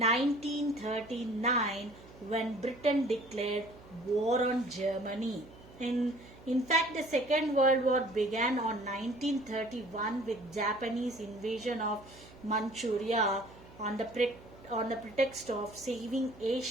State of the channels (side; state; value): right; noise; hum, 21 dB below the sound